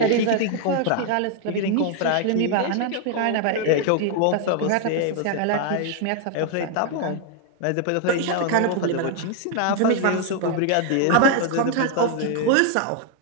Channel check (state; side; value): different; both; correlation 0.00